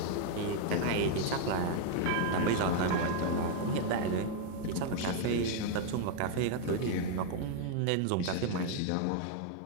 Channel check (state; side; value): different; both; correlation 0.00